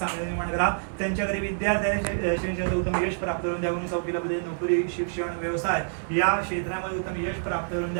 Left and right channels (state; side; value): silent; left; digital silence